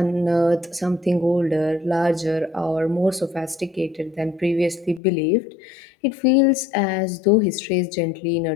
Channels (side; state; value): right; drops out; at 5.0 s